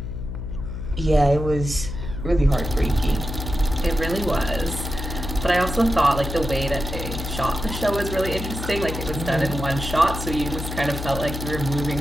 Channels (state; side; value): noise; left; hum, 6 dB below the sound